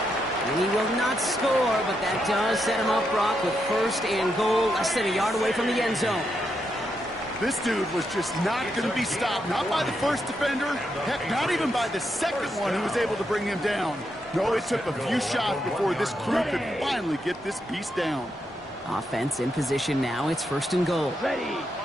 And he will not score, but that does set him up, Brock, with 1st and goal, less than a yard away from the end zone. This dude was just not going to be stopped, not by the first defender, heck, not even by the 2nd one who was able to bring him down. No, it took a few shots before this crew could finally get this beast down. Offense in position now. It's 1st and goal. Ready.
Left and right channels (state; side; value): normal; both; correlation 0.82